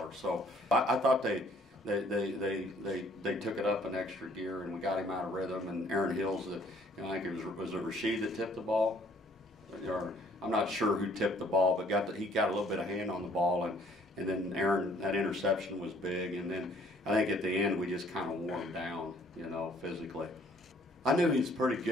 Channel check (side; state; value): both; normal; correlation 0.60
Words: So I thought they took it up an extra gear, and we got him out of rhythm. And Aaron Hills, I think it was Rashid that tipped the ball. Or, I'm not sure who tipped the ball, but he got a little bit of hand on the ball, and then Aaron, that interception was big. And then I think at the end we just kind of wore him down, you know, physically. I knew he was pretty